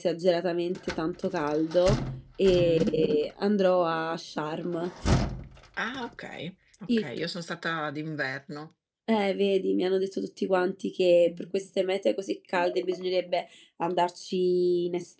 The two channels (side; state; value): both; identical; correlation 1.00